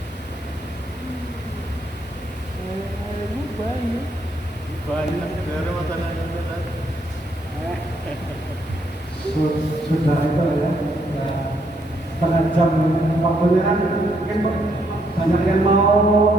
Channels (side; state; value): both; normal; correlation 0.73